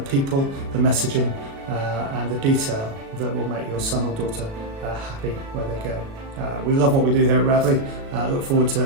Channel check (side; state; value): left; late; 36 ms